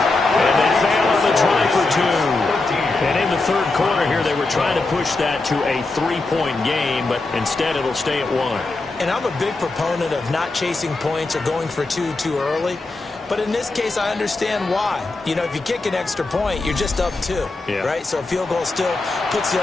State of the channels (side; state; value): right; quieter; 3.3 dB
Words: And they fail on the try for two. And in the third quarter here, they were trying to push that to a three-point game, but instead it'll stay at one. And I'm a big proponent of not chasing points or going for two too early. But in this case, I understand why. If you kick an extra point, you're just up two, right? So a field goal still puts the